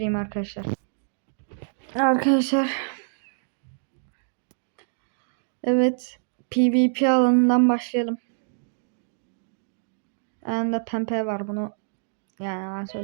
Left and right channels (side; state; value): left; silent; digital silence